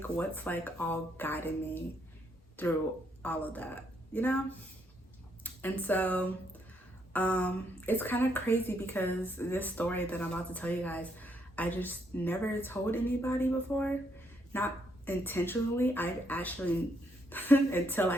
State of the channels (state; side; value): normal; both; correlation 0.74